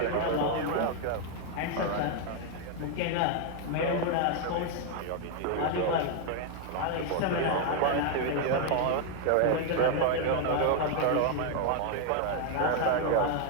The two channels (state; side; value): different; both; correlation 0.00